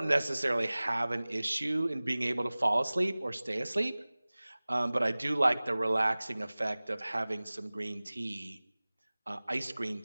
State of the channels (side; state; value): both; inverted; correlation -0.99